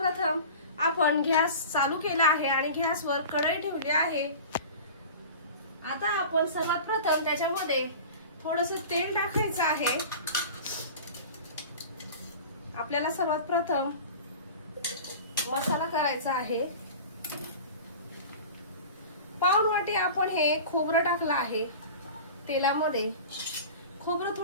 आपण गॅस चालू केला आहे आणि गॅसवर कढई ठेवली आहे। आता आपण सर्वात प्रथम त्याच्यामध्ये थोडंसं तेल टाकायचं आहे। आपल्याला सर्वात प्रथम मसाला करायचा आहे। पाऊण वाटी आपण हे खोबरं टाकलं आहे तेलामध्ये। खोबरं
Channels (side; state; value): both; inverted; correlation -0.36